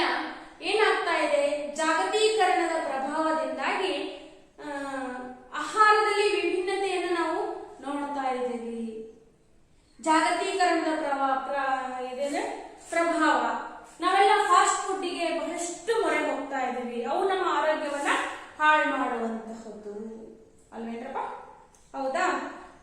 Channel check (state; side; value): identical; both; correlation 1.00